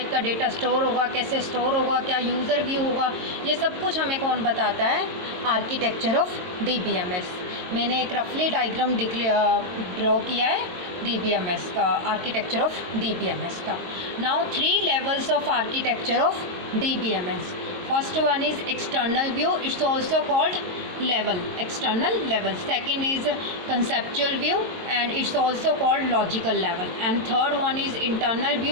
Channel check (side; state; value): left; late; 22 ms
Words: का data store होगा, कैसे store होगा, क्या यूज़र व्यू होगा, ये सब कुछ हमें कौन बताता है? Architecture of DBMS. मैंने एक रफली डायग्राम ड्रॉ किया है DBMS का, आर्किटेक्चर ऑफ DBMS का. Now 3 levels of architecture of DBMS. First one is external view, it's also called level, external level. Second is conceptual view and it's also called logical level, and third one is internal